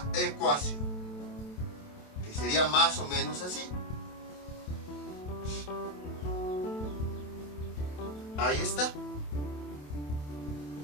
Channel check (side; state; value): right; late; 27 ms